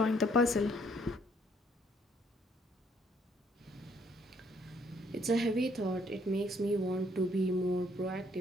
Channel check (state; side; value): normal; both; correlation 0.66